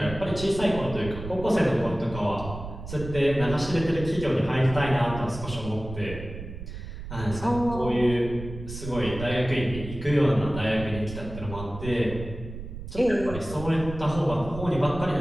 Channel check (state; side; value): noise; right; rumble, 10 dB below the sound